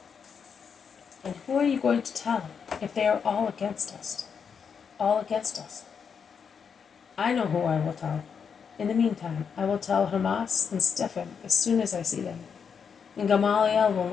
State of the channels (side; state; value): right; quieter; 6.6 dB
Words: "And who are you going to tell, if they are all against us? All against us?" "I know who I will tell. In the meantime, I will tell Hermas and Stephen as soon as I see them. And Gamaliel will